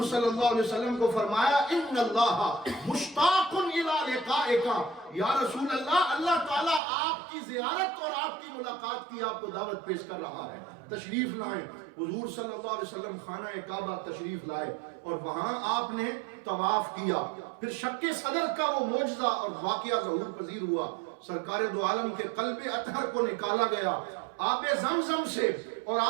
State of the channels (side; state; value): left; drops out; at 6.8 s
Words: صلی اللہ علیہ وسلم کو فرمایا ان اللہ مشتاق الی لقائک، یا رسول اللہ، اللہ تعالیٰ آپ کی زیارت اور آپ کی ملاقات کی آپ کو دعوت پیش کر رہا ہے، تشریف لائیں۔ حضور صلی اللہ علیہ وسلم خانہ کعبہ تشریف لائے اور وہاں آپ نے طواف کیا، پھر شق صدر کا وہ معجزہ اور واقعہ ظہور پذیر ہوا، سرکار دو عالم کے قلب اطہر کو نکالا گیا، آب زمزم سے اور